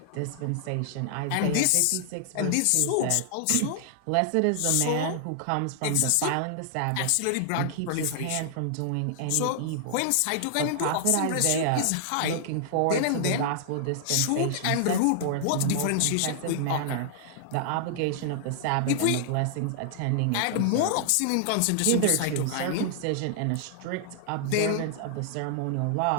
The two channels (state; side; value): different; both; correlation -0.01